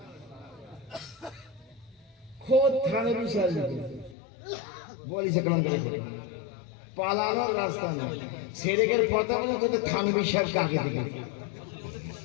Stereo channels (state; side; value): drops out; right; at 4.2 s